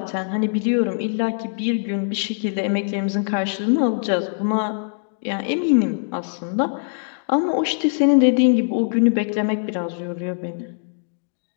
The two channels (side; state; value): right; silent; digital silence